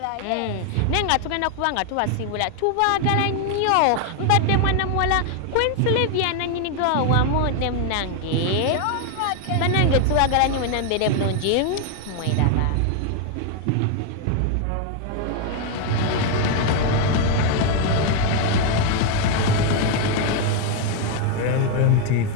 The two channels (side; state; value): both; different; correlation 0.01